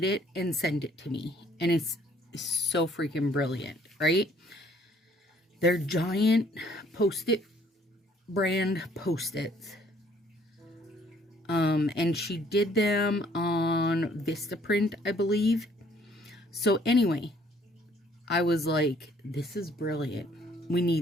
it and sent it to me, and it's so freaking brilliant, right? They're giant Post-it brand Post-its. And she did them on Vistaprint, I believe. So anyway, I was like, this is brilliant. We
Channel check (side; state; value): both; normal; correlation 0.61